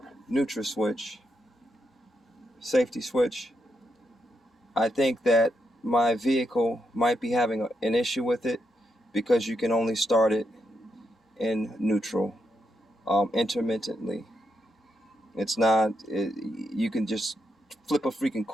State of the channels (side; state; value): both; normal; correlation 0.81